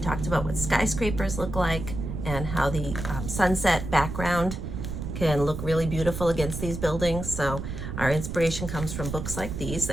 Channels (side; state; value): right; noise; rumble, 6 dB below the sound